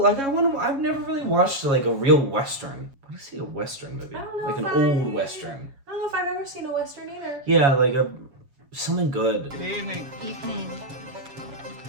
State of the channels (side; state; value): left; late; 7.3 ms